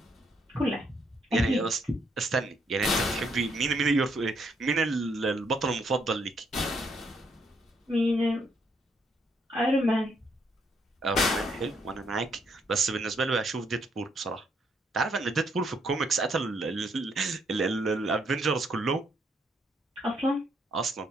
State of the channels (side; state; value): both; normal; correlation 0.73